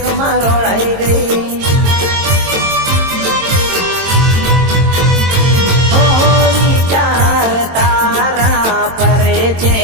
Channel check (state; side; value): late; left; 22 ms